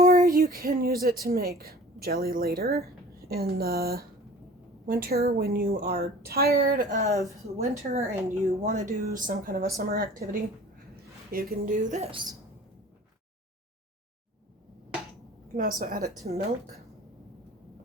you can use it to make jelly later in the winter when you are tired of winter and you want to do some kind of a summer activity. You can do this. You can also add it to milk,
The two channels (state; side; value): normal; both; correlation 0.45